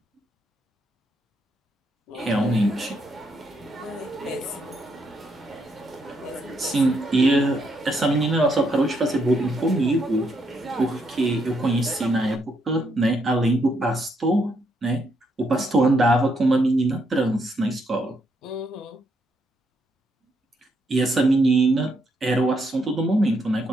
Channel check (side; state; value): both; normal; correlation 0.76